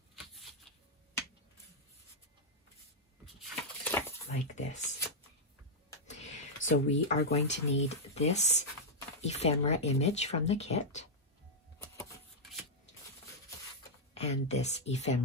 like this. So we are going to need this ephemera image from the kit and this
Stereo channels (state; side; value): normal; both; correlation -0.06